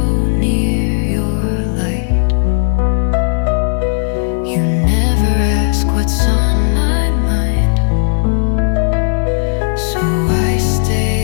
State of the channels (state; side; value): silent; right; digital silence